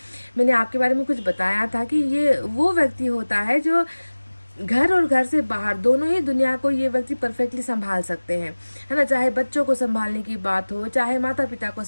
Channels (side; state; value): both; inverted; correlation -1.00